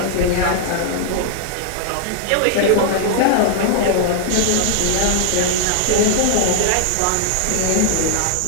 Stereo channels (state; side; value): different; both; correlation 0.00